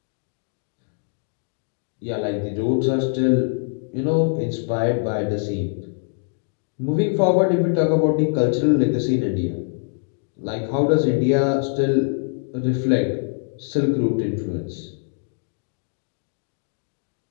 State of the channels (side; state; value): right; silent; digital silence